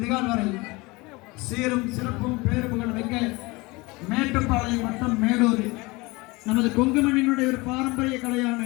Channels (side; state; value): right; quieter; 23.9 dB